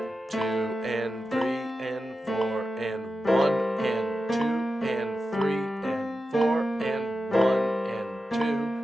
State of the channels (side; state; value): both; normal; correlation 0.91